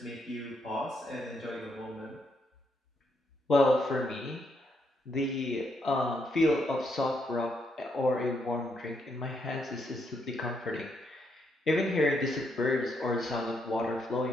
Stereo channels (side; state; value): both; normal; correlation 0.77